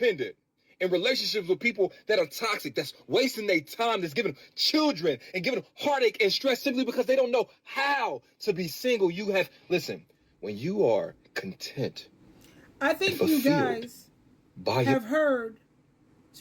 in relationships with people that are toxic, that's wasting their time, that's giving them children and giving them heartache and stress simply because they don't know how to be single. Listen, when you are content, I think you guys have heard,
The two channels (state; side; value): identical; both; correlation 1.00